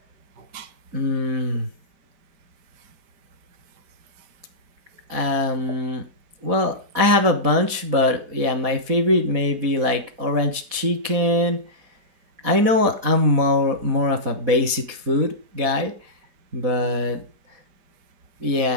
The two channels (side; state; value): left; late; 4.1 ms